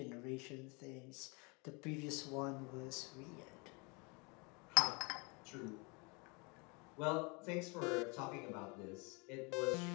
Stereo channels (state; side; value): quieter; right; 30.4 dB